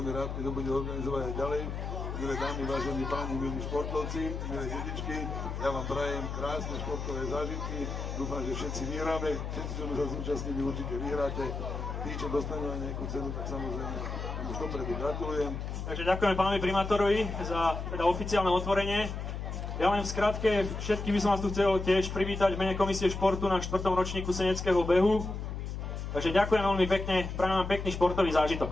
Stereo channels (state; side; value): noise; left; hum, 5 dB below the sound